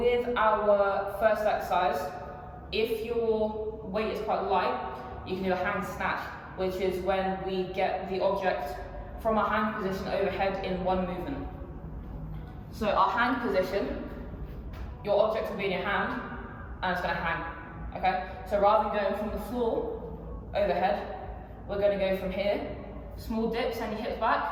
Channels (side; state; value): both; identical; correlation 1.00